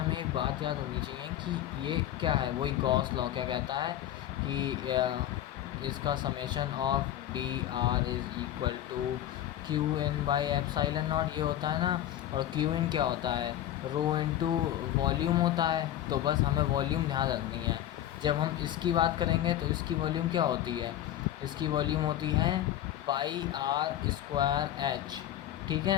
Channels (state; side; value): quieter; right; 12.2 dB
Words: एक बात याद होनी चाहिए कि ये क्या है। वही गॉस लॉ क्या कहता है कि इसका summation of D R is equal to Q in by epsilon naught, ये होता है ना। और क्यू इन क्या होता है, रो इनटू वॉल्यूम होता है। तो बस हमें वॉल्यूम ध्यान रखनी है। जब हम इसकी बात करेंगे तो इसकी वॉल्यूम क्या होती है, इसकी वॉल्यूम होती है पाई आर स्क्वायर एच। ठीक